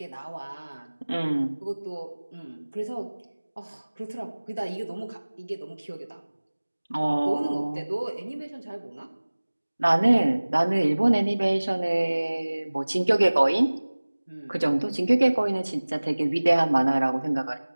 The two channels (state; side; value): inverted; both; correlation -1.00